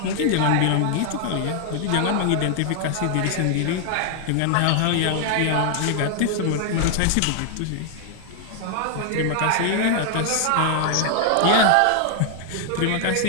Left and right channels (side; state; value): both; different; correlation 0.00